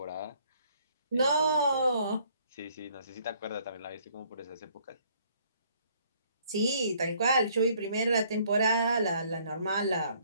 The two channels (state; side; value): inverted; both; correlation -0.63